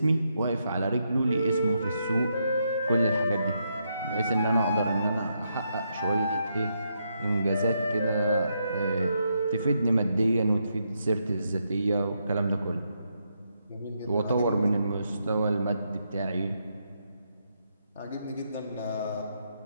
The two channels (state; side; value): inverted; both; correlation -0.80